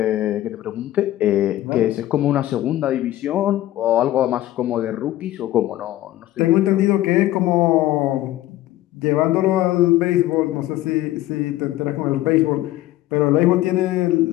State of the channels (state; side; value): quieter; right; 15.0 dB